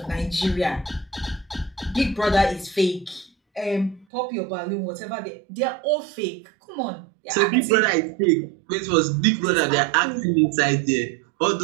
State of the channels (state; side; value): drops out; left; at 4.0 s